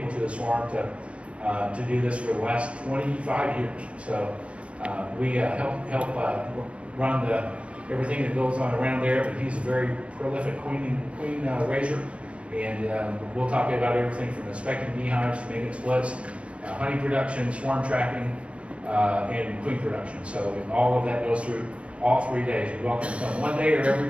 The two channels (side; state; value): left; late; 0.061 ms